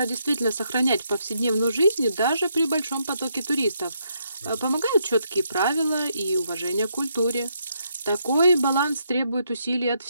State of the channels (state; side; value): inverted; both; correlation -0.76